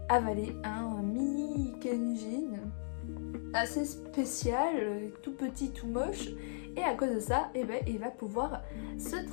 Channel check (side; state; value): right; silent; digital silence